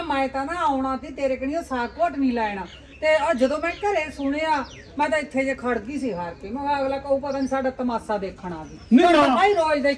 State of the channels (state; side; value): identical; both; correlation 1.00